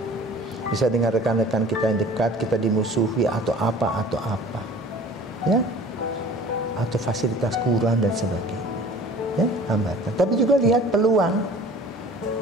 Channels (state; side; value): normal; both; correlation 0.46